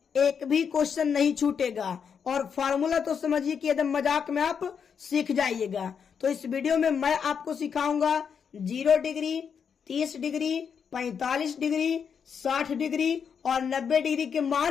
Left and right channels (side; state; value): right; quieter; 6.9 dB